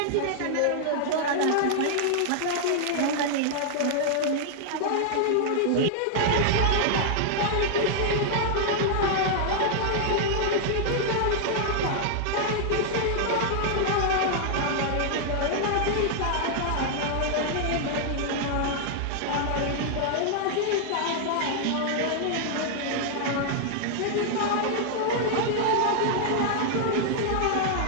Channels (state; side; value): different; both; correlation -0.01